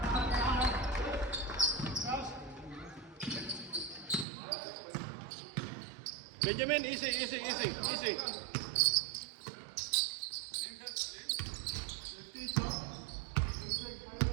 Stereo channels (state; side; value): drops out; left; at 4.2 s